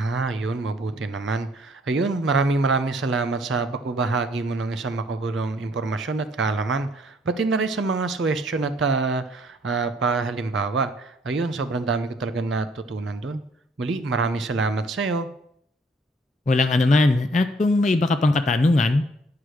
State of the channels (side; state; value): both; normal; correlation 0.62